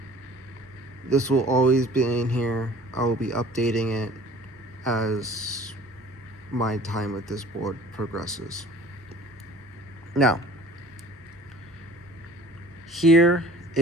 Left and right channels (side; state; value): both; normal; correlation 0.48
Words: This will always be in here. I will be updating it as my time with this board progresses. Now, here